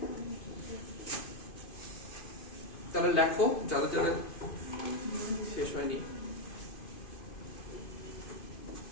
তাহলে লেখো যাদের যাদের শেষ হয়নি।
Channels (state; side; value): late; right; 2.5 ms